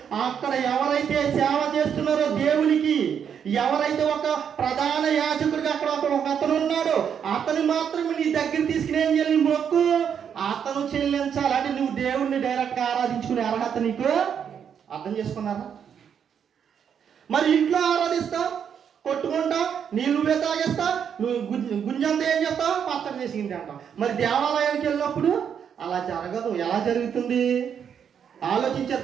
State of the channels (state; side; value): quieter; left; 7.9 dB